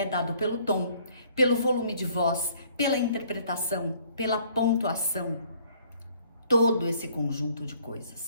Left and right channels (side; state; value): both; inverted; correlation -0.60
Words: dado pelo tom, pelo volume de voz, pela interpretação, pela pontuação, todo esse conjunto de